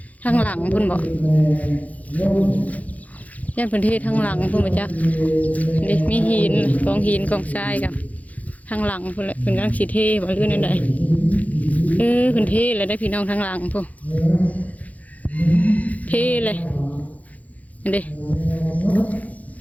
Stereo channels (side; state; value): right; late; 0.073 ms